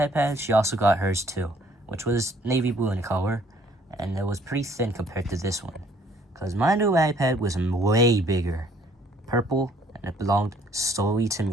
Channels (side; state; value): both; normal; correlation 0.61